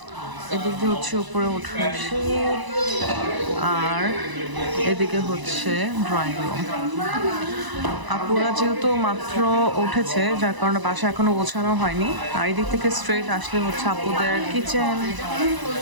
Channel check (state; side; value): late; left; 1.0 ms